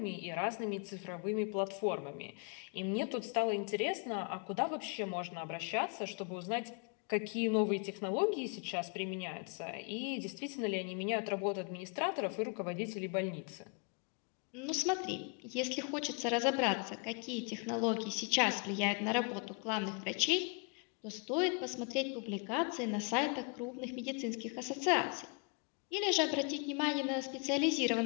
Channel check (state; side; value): quieter; right; 34.2 dB